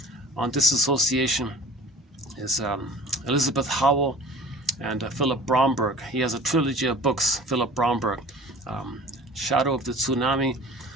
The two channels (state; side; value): normal; both; correlation 0.43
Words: on disassociation is Elizabeth Howell and Philip Bromberg. He has a trilogy of books, Philip Bromberg, Shadow of the Tsunami.